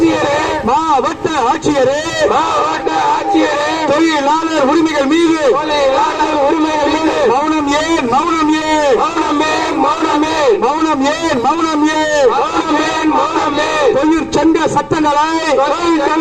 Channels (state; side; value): identical; both; correlation 1.00